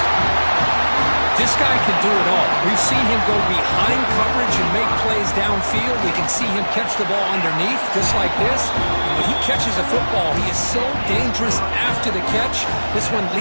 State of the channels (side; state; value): both; inverted; correlation -1.00